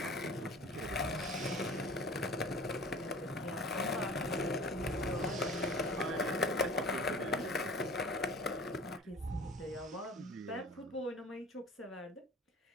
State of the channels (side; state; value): both; normal; correlation 0.42